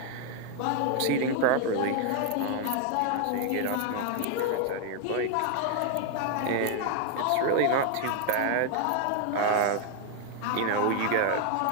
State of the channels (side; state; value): both; different; correlation 0.00